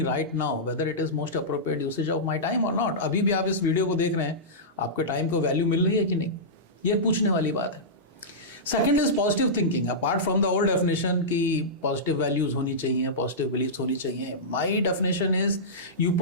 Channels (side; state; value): both; normal; correlation -0.15